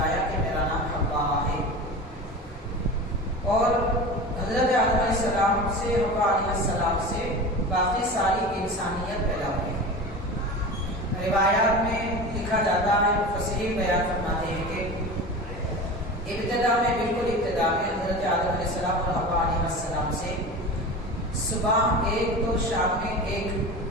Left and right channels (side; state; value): both; normal; correlation 0.31